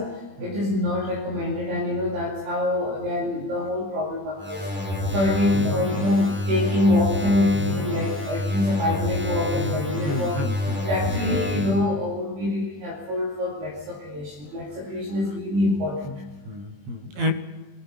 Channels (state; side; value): late; left; 21 ms